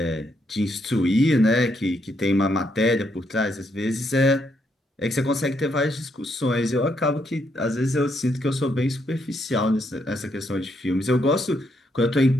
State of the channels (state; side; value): normal; both; correlation 0.76